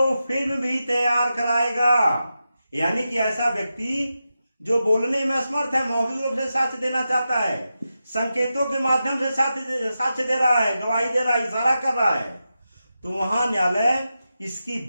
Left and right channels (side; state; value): both; inverted; correlation -0.90